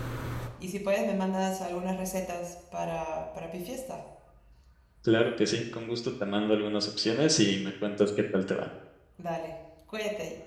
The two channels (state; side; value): identical; both; correlation 1.00